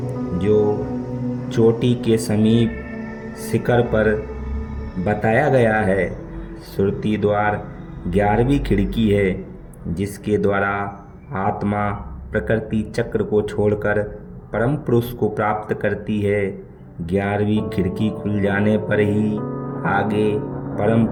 जो चोटी के समीप शिखर पर बताया गया है। सुरति द्वार 11वीं खिड़की है, जिसके द्वारा आत्मा प्रकृति चक्र को छोड़कर परम पुरुष को प्राप्त करती है। 11वीं खिड़की खुल जाने पर ही आगे परम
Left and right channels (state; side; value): identical; both; correlation 1.00